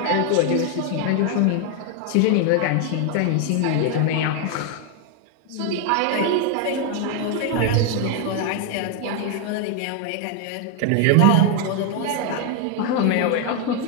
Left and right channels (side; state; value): both; different; correlation 0.01